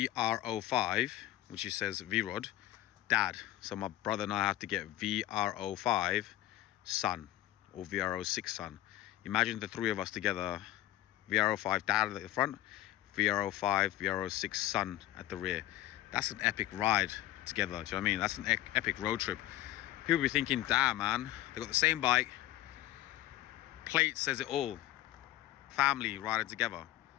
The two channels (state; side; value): quieter; right; 15.0 dB